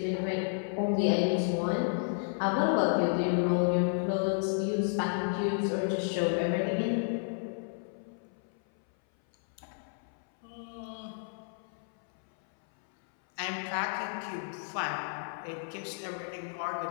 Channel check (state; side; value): silent; right; 57 dB below the other